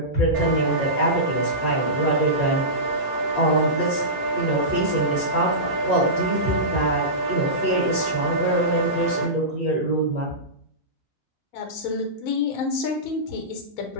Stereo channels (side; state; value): both; normal; correlation -0.19